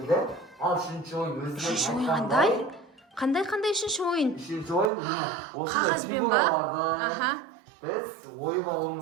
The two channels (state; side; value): drops out; left; at 4.9 s